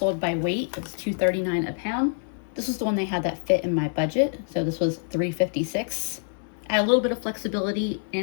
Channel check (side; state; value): right; silent; digital silence